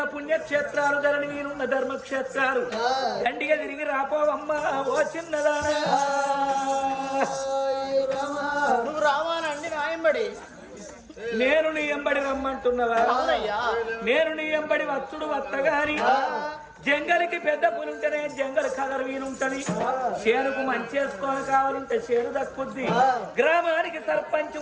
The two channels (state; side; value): identical; both; correlation 1.00